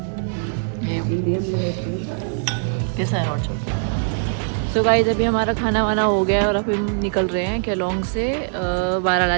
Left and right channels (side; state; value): left; silent; digital silence